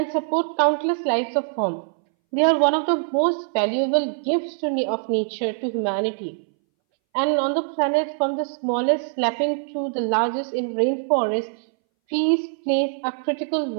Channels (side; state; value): left; silent; 62 dB below the other